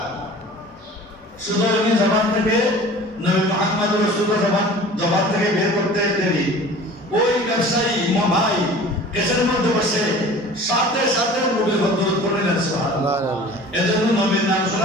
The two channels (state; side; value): normal; both; correlation 0.43